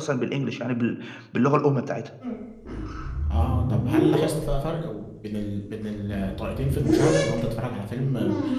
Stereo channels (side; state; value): both; identical; correlation 1.00